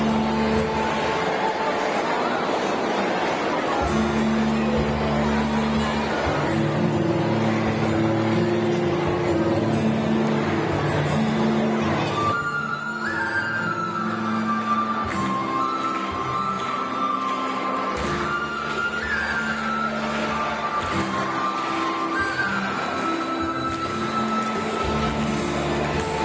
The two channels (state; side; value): identical; both; correlation 1.00